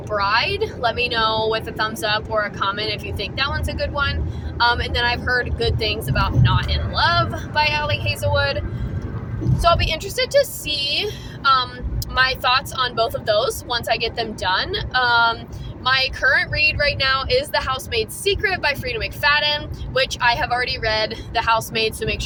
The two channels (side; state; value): both; identical; correlation 1.00